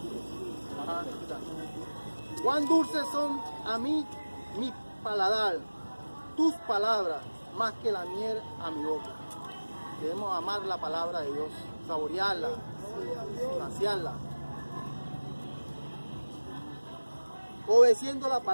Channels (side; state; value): both; inverted; correlation -1.00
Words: Ajá, cuán dulces son a mí mi paladar, tus palabras, más que la miel a mi boca. Debemos amar la palabra de Dios, saborearla, saciarla. Obedeciendo la